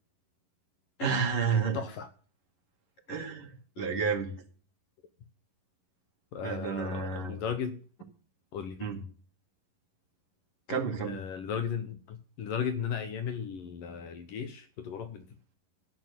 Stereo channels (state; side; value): late; right; 11 ms